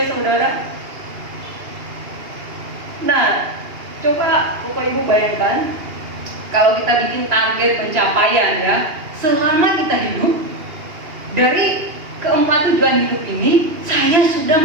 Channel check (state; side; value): late; left; 2.8 ms